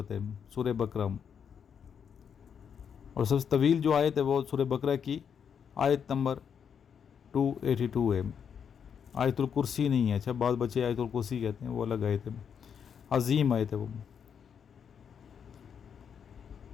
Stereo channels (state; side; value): quieter; right; 7.4 dB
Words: ہے، سورہ بقرہ، اور سب سے طویل جو آیت ہے وہ سورہ بقرہ کی آیت نمبر 282 ہے۔ آیت الکرسی نہیں ہے، اچھا بعض بچے آیت الکرسی کہتے ہیں، وہ الگ آیت ہے، عظیم آیت ہے وہ۔